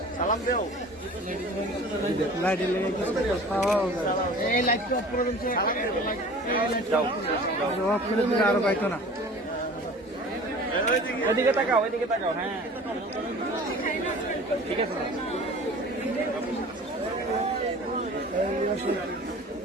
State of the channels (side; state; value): both; normal; correlation 0.43